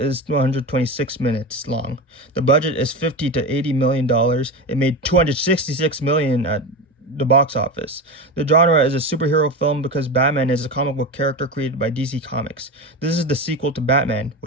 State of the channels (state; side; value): normal; both; correlation 0.22